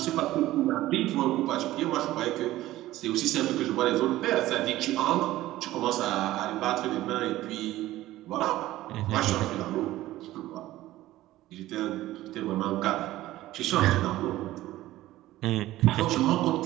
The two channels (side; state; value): left; quieter; 15.8 dB